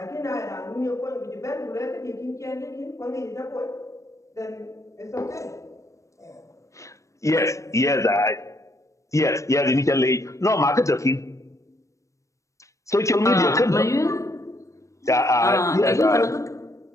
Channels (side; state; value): right; late; 0.15 ms